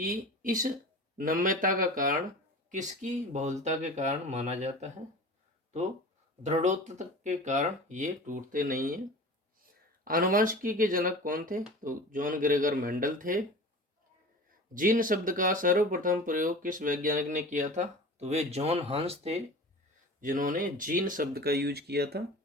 इस नम्यता का कारण किसकी बहुलता के कारण माना जाता है? तो दृढ़ोत्तता के कारण ये टूटते नहीं हैं। आनुवंशिकी के जनक कौन थे? तो जॉन ग्रेगर मेंडल थे। जीन शब्द का सर्वप्रथम प्रयोग किस वैज्ञानिक ने किया था? तो वे जॉन हंस थे जिन्होंने जीन शब्द का यूज किया था।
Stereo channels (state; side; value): normal; both; correlation 0.37